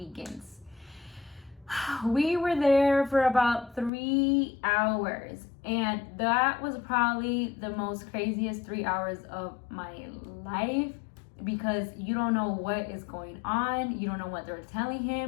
We were there for about 3 hours, and that was probably the most craziest 3 hours of my life, because you don't know what is going on, you don't know what they're telling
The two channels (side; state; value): right; drops out; at 3.9 s